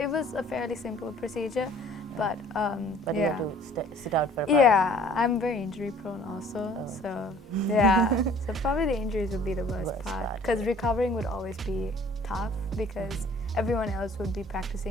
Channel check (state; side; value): normal; both; correlation 0.54